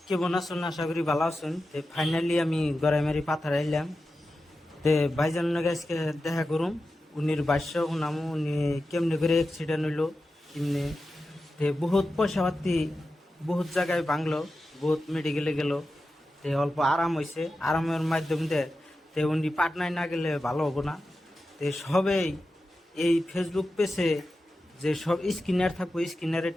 কেমন আছেন? আশা করি ভালো আছেন। ফাইনালি আমি গড়াইমারি পাথার আইলাম। ভাইজান গাইসকে দেখা করুম, উনির বাস্য শুনামু উনি কেমনে করে অ্যাক্সিডেন্ট হইলো, কেমনে বহুত পয়সা পাতি বহুত জায়গায় ভাঙলো, বহুত মেডিকেলে গেল। অল্প আরাম হয়েছে, আরামের মাধ্যম দিয়ে উনি পাটনায় না গেলে ভালো হবো না। সবেই এই ফেসবুক পেজে যে সব স্ক্রিনার থাকবো স্ক্রিনারে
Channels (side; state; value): both; normal; correlation 0.92